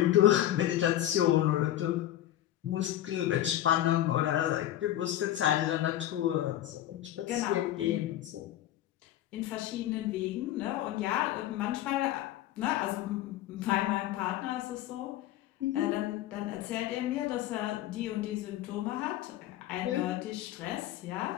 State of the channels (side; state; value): right; quieter; 13.1 dB